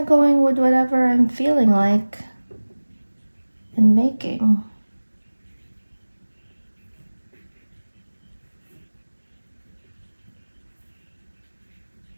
going with whatever I'm feeling like and making.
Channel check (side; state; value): both; inverted; correlation -1.00